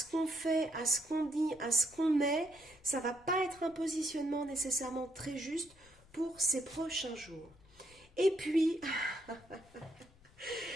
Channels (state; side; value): noise; left; rumble, 27 dB below the sound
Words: qu'on fait, à ce qu'on dit, à ce qu'on est. Ça ne va pas être un positionnement nécessairement très juste pour ces prochains jours. Et puis...